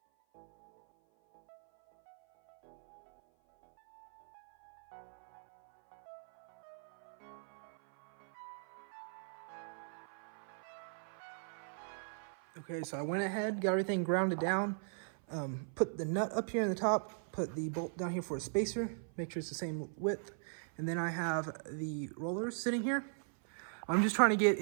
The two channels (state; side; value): silent; left; 52 dB below the other